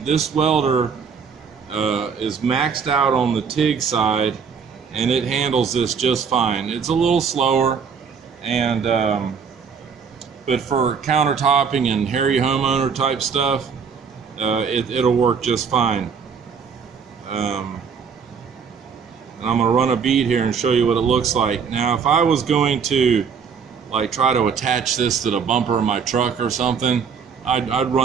this welder is maxed out on the TIG side, and it handles this just fine. It's a little slower, and but for countertopping and hairy homeowner type stuff, it'll work just fine. And I'm gonna run a bead here and show you what it looks like. Now, if I was going to like try to attach this to the bumper of my truck or something, I'd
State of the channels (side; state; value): left; quieter; 6.2 dB